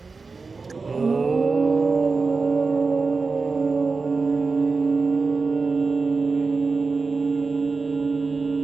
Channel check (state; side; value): quieter; left; 4.2 dB